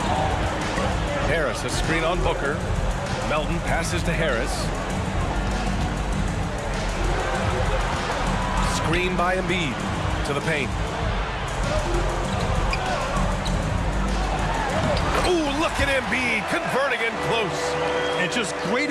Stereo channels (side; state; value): both; identical; correlation 1.00